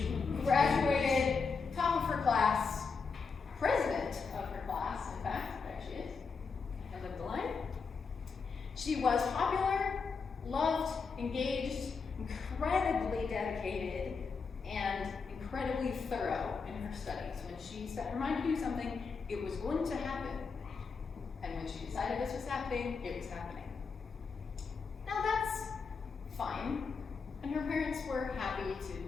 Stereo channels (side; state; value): right; quieter; 5.1 dB